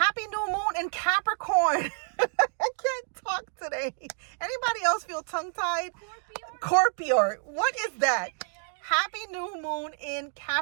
new moon in Capricorn. I can't talk today. Anybody else feel tongue-tied? Scorpio. What is that? Happy new moon in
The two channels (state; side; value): silent; left; 59 dB below the other